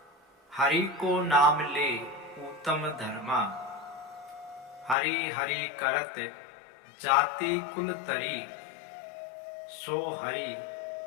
हरि को नाम ले उत्तम धर्मा। हरि हरि करत जाति कुल तरी, सो हरि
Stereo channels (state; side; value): drops out; right; at 5.0 s